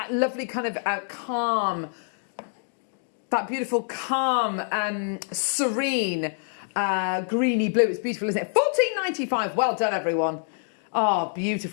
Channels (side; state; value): right; silent; 61 dB below the other